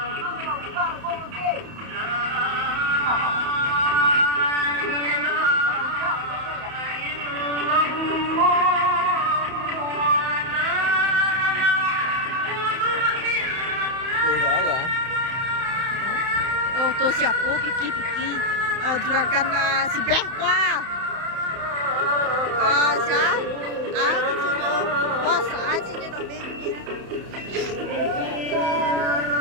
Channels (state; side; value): late; left; 31 ms